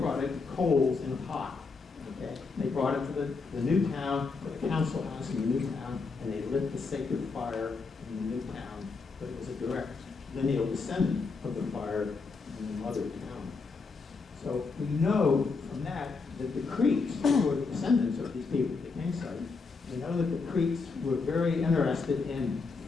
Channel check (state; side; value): quieter; right; 4.4 dB